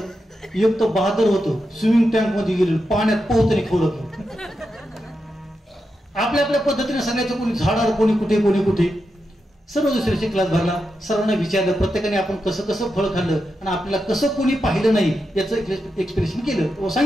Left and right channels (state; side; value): normal; both; correlation 0.87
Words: एक तर बहादर होतो, स्विमिंग टँक मध्ये गेले, पाण्यात पोहतने खाऊ लागलं. आपल्या आपल्या पद्धतीने सांगायचं, कोणी झाडावर, कोणी कुठे, कोणी कुठे. सर्व दुसऱ्याचे क्लास भरला, सर्वांना विचारलं, प्रत्येकाने आपण कसं कसं फळ खाल्लं आणि आपल्याला कसं कोणी पाहिलं नाही याचं एक्सप्रेशन केलं.